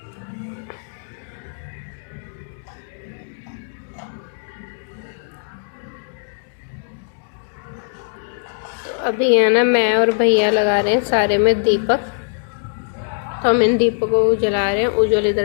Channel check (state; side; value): silent; right; 65 dB below the other